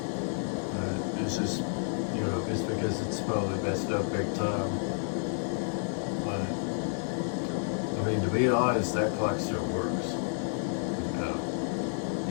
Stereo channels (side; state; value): right; silent; digital silence